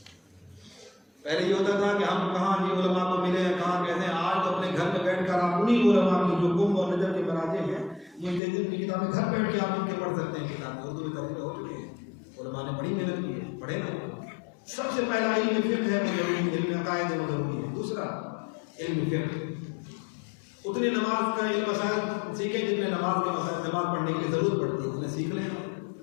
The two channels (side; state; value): right; drops out; at 8.4 s